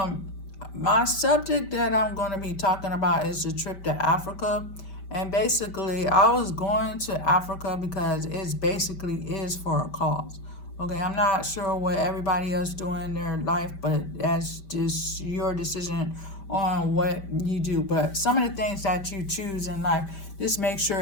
my subject that I'm going to be talking about is the trip to Africa, and basically, I was going to Africa because it's basically is for a cause. Okay, I'm not sure what everybody else doing in their life, but that's just your decision on what you do. But some of the things that you choose in life, just make sure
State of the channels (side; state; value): right; late; 5.2 ms